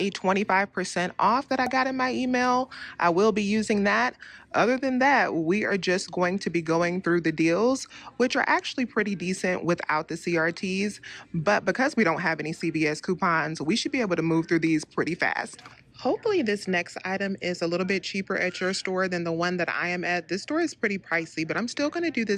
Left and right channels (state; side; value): identical; both; correlation 1.00